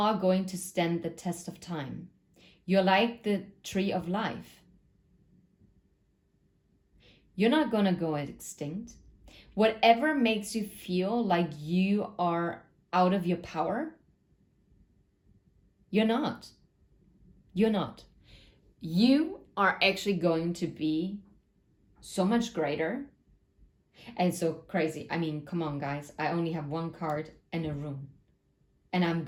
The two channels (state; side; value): identical; both; correlation 1.00